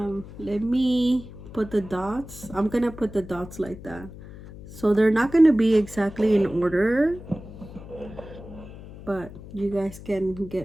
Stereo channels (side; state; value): left; noise; hum, 15 dB below the sound